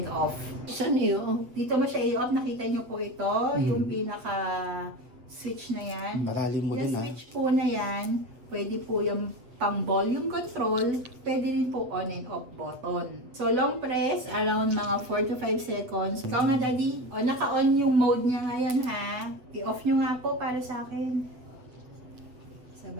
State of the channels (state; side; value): late; left; 8.0 ms